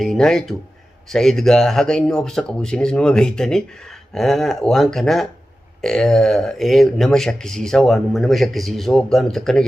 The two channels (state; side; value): normal; both; correlation 0.93